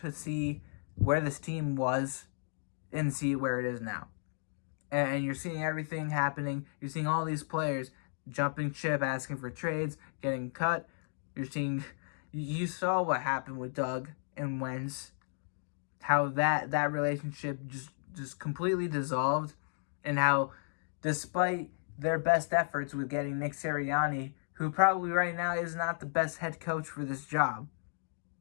see where this team was and see where it is now. And you're seeing everything happening. You're seeing all these players jumping ship, asking for trades, getting cut. You saw what happened with Doug and Wentz, how that relationship just completely dissolved, and how despite their best efforts with getting Nick Sirianni, who probably right now is not the best head coach for this job,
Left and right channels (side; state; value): right; silent; digital silence